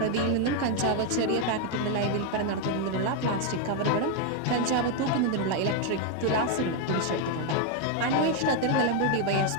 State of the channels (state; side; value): different; both; correlation 0.01